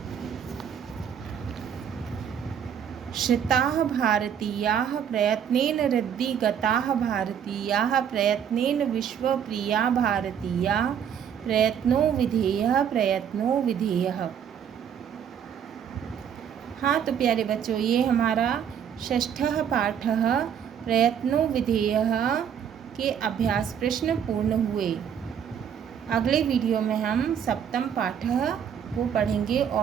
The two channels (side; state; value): left; quieter; 8.3 dB